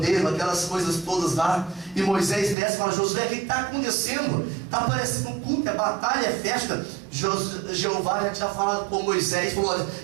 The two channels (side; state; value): left; drops out; at 2.6 s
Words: aquelas coisas todas lá. E Moisés desce e fala: Josué, o que está acontecendo? Está parecendo um culto, é batalha, é festa. Jeová já tinha falado com Moisés, falou: olha,